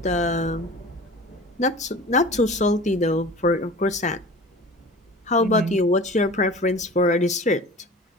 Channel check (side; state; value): both; normal; correlation 0.39